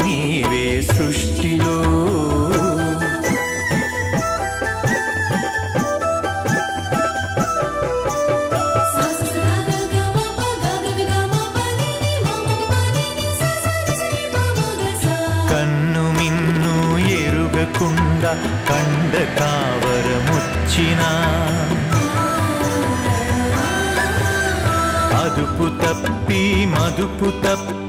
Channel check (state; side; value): identical; both; correlation 1.00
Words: నీవే సృష్టిలో. కన్ను మిన్ను ఎరుగకుండా కండ కావరముచ్చినా, అదుపు తప్పి మదుపు